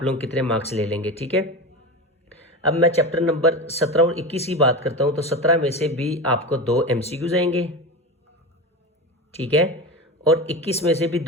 लोग कितने मार्क्स ले लेंगे। ठीक है, अब मैं चैप्टर नंबर 17 और 21 की बात करता हूं, तो 17 में से भी आपको 2 एमसीक्यूज आएंगे। ठीक है, और 21 में से भी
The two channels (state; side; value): normal; both; correlation 0.24